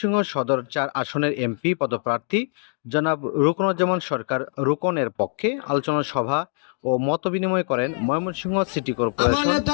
সদর ৪ আসনের এমপি পদপ্রার্থী জনাব রুকনুজ্জামান সরকার রুকনের পক্ষে আলোচনা সভা ও মতবিনিময় করেন ময়মনসিংহ সিটি কর্পোরেশন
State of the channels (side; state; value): right; silent; 63 dB below the other